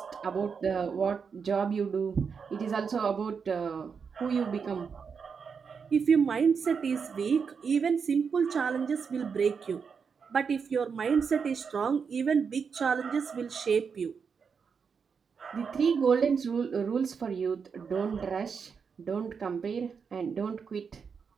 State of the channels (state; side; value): quieter; left; 6.0 dB